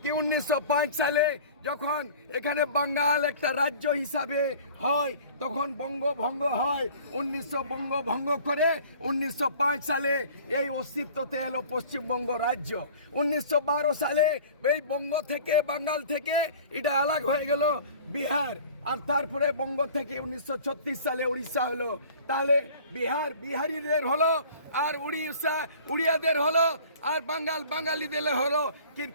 কি 1905 সালে যখন এখানে বাঙ্গাল একটা রাজ্য হিসাবে হয় তখন বঙ্গভঙ্গ হয়। 1900 বঙ্গভঙ্গ করে 1905 সালে এই অস্তিত্বতে এলো পশ্চিমবঙ্গ রাজ্য। 1912 সালে এই বঙ্গ থেকে বাঙ্গাল থেকে এটা আলাদা হয়ে গেল বিহার, আর তারপরে বঙ্গ থেকে 1936 সালে উড়িষ্যা হলো। তাহলে বিহারিদের হলো, আর উড়িয়াদের হলো, আর বাঙালিদের হলো।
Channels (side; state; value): both; inverted; correlation -0.46